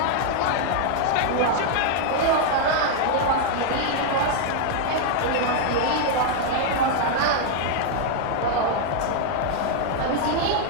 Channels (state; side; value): different; both; correlation 0.00